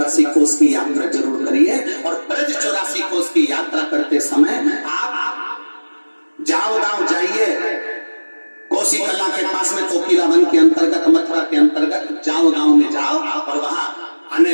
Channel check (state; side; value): inverted; both; correlation -1.00